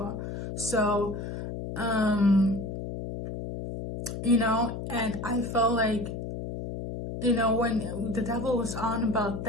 So, you know, and I felt like, you know, when the devil was on about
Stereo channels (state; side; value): noise; left; hum, 6 dB below the sound